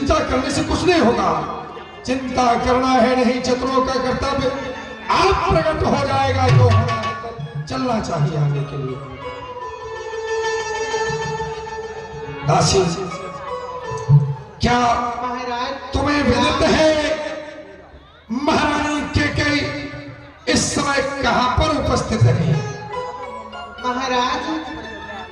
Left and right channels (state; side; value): identical; both; correlation 1.00